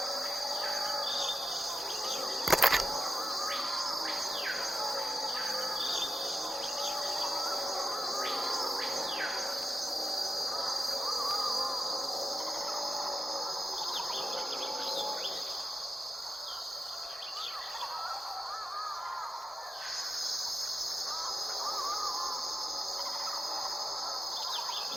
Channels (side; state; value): both; normal; correlation 0.91